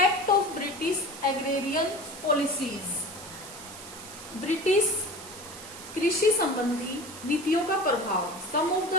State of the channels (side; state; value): right; noise; hiss, 15 dB below the sound